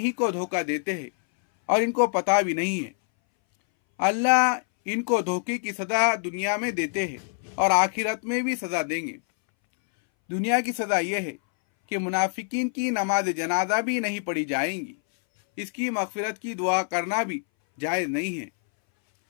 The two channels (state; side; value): silent; right; 61 dB below the other